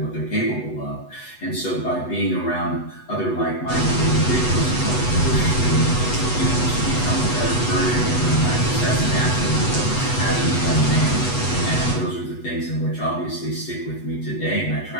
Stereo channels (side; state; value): right; late; 8.1 ms